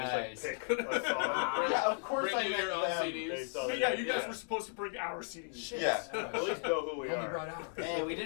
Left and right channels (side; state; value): right; silent; 54 dB below the other